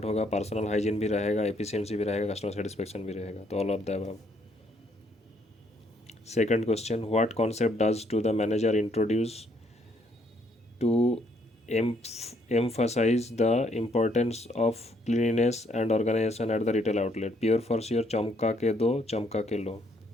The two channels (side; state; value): both; normal; correlation 0.69